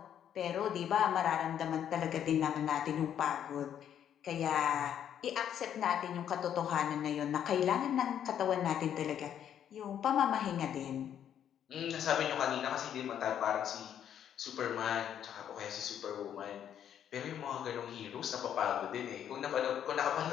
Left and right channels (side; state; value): right; quieter; 9.6 dB